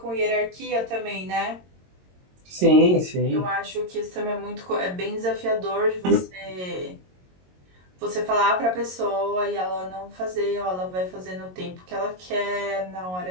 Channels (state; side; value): late; left; 22 ms